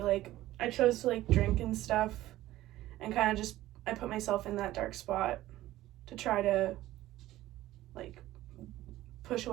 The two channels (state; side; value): quieter; left; 15.5 dB